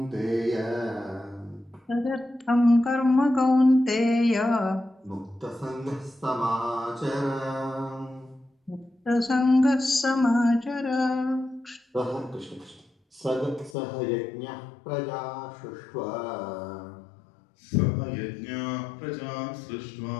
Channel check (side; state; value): right; drops out; at 13.8 s